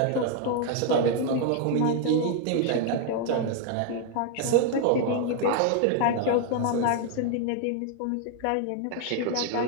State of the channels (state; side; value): different; both; correlation 0.00